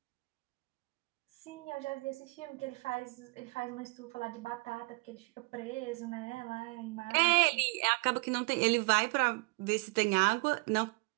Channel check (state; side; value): quieter; left; 29.0 dB